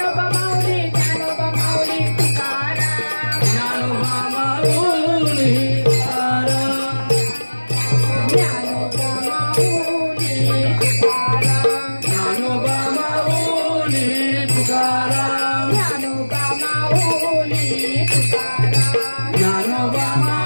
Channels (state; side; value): inverted; both; correlation -1.00